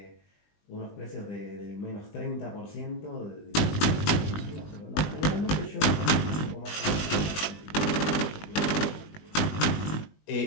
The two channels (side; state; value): right; late; 20 ms